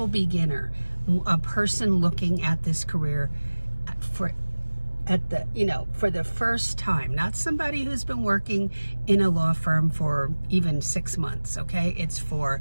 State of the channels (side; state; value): both; inverted; correlation -1.00